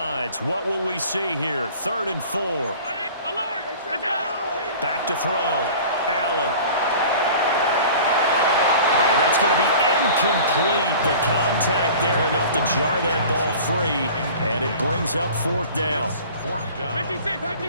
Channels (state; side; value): inverted; both; correlation -0.43